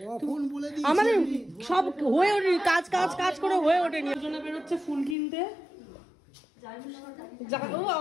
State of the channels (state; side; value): drops out; right; at 5.2 s